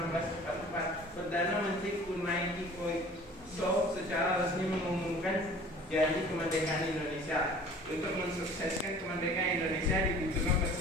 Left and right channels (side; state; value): both; normal; correlation 0.47